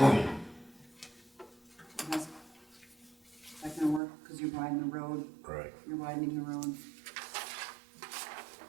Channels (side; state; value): left; drops out; at 4.0 s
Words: That's gonna work, because you're widening the road, Right. you're widening the road.